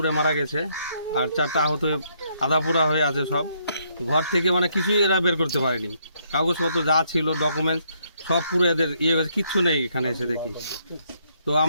মারা গেছে, আর 4টা আহত আধা পোড়া হয়ে আছে সব। ঘর থেকে মানে কিছুই এরা বের করতে পারেনি, কাগজপত্র যা ছিল ডকুমেন্টস সব পুরো এদের গেছে, কিচ্ছু নেই এখানে এসে দেখি। তো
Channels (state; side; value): inverted; both; correlation -0.72